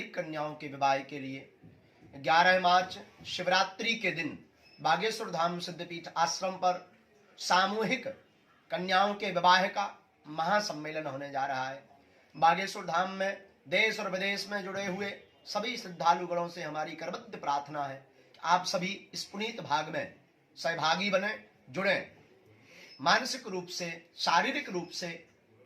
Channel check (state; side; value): identical; both; correlation 1.00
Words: कन्याओं के विवाह के लिए, 11 मार्च शिवरात्रि के दिन बागेश्वर धाम सिद्धपीठ आश्रम पर सामूहिक कन्याओं के विवाह का महासम्मेलन होने जा रहा है। बागेश्वर धाम में देश और विदेश में जुड़े हुए सभी श्रद्धालुगणों से हमारी करबद्ध प्रार्थना है कि आप सभी इस पुनीत भाग में सहभागी बने, जुड़े, मानसिक रूप से, शारीरिक रूप से